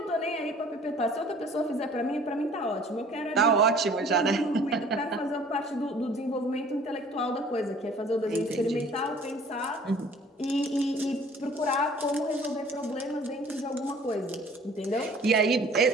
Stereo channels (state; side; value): normal; both; correlation 0.51